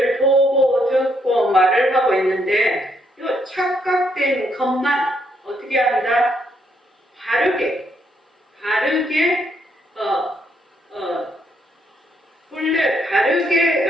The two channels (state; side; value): normal; both; correlation 0.74